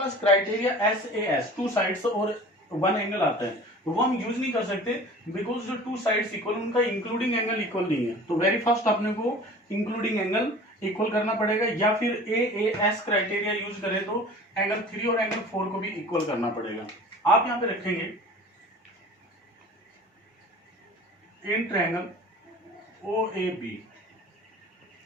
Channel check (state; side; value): normal; both; correlation 0.42